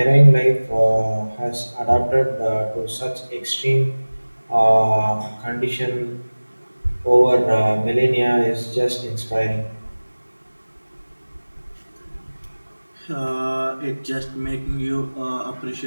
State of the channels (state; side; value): inverted; both; correlation -1.00